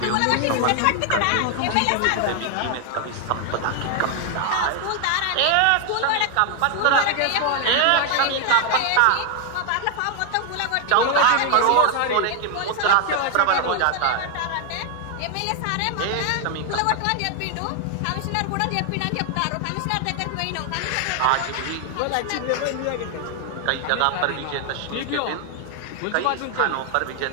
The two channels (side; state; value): both; different; correlation 0.00